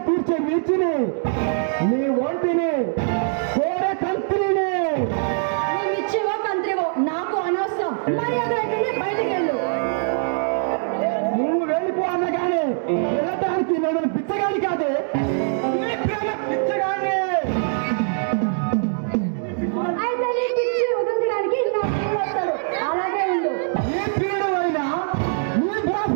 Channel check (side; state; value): left; silent; digital silence